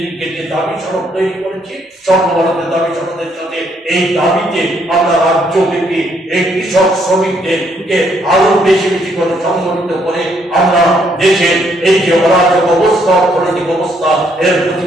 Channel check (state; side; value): normal; both; correlation 0.70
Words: যে দাবি সনদ তৈরি করেছি, সর্বভারতের দাবি সনদের সাথে এই দাবিতে আমরা রাজ্যব্যাপী এই কৃষক শ্রমিকদেরকে আরো বেশি বেশি করে সংগঠিত করে আমরা দেশের এই যে অরাজক অবস্থা, অর্থনৈতিক অবস্থা, এর